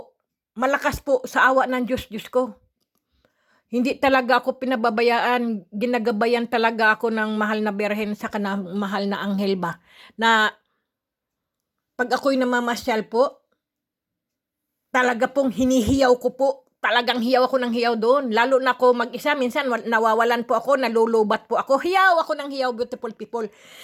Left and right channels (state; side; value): identical; both; correlation 1.00